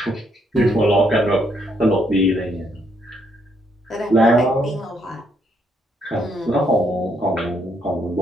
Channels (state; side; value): normal; both; correlation 0.73